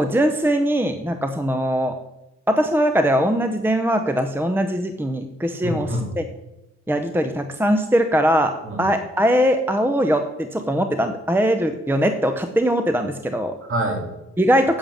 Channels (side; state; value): both; normal; correlation 0.76